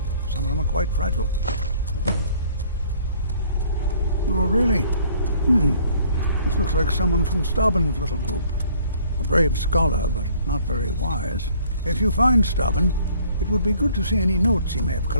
Some of them are quite fragile. Oh, really? This looks like someone from Stauben's little group. A brave scholar, but not very wise. If you find Stauben, it would be good to see any notes he may have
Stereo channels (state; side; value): inverted; both; correlation -0.58